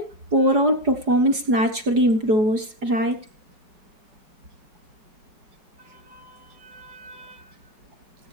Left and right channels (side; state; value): left; late; 4.8 ms